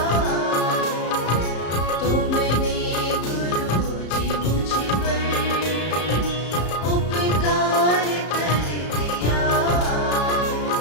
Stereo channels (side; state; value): right; late; 34 ms